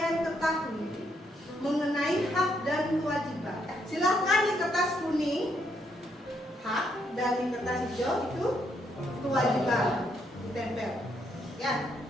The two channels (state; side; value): normal; both; correlation 0.75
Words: ketahui mengenai hak dan kewajiban. Silahkan di kertas kuning hak dan di kertas hijau itu kewajiban ditempel. Ya,